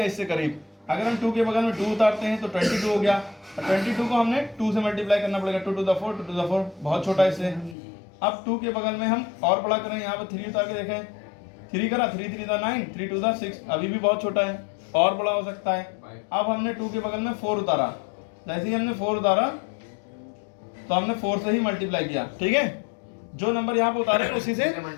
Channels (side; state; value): right; drops out; at 7.8 s